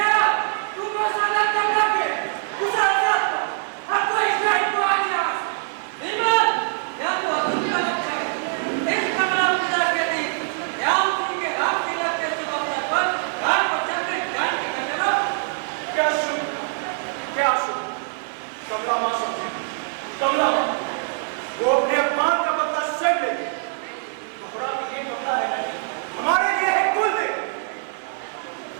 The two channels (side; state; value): left; silent; 63 dB below the other